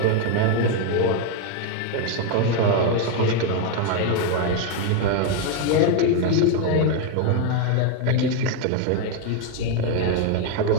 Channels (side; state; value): both; different; correlation 0.01